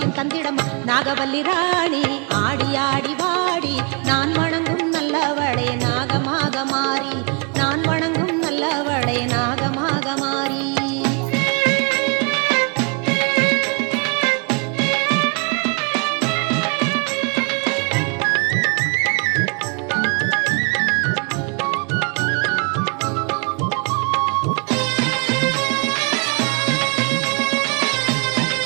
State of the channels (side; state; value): left; quieter; 34.3 dB